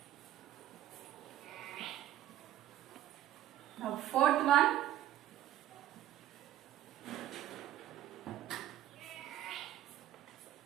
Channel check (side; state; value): left; quieter; 12.9 dB